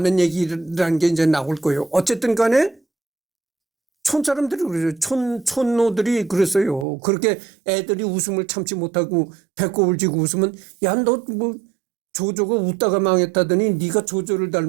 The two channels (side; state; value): left; drops out; at 6.9 s